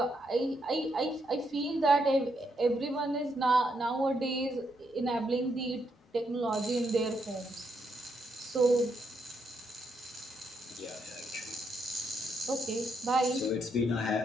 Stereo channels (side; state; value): both; normal; correlation 0.78